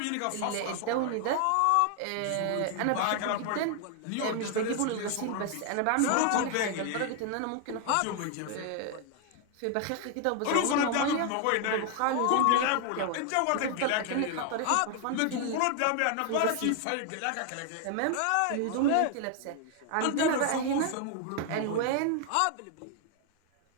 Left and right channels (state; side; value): different; both; correlation 0.00